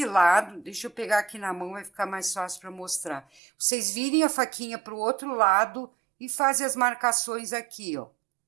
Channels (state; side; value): drops out; left; at 3.4 s